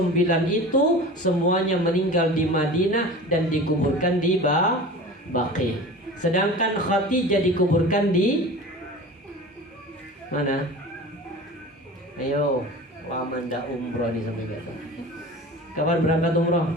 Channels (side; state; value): both; normal; correlation 0.36